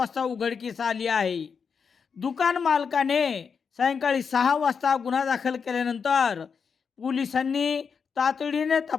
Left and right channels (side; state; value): right; quieter; 6.1 dB